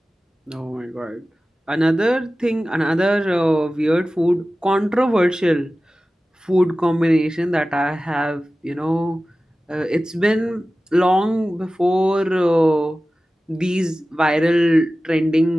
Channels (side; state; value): both; normal; correlation 0.96